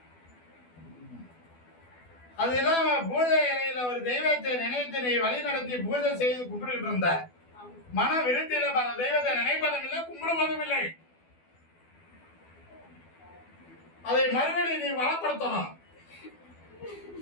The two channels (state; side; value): late; right; 12 ms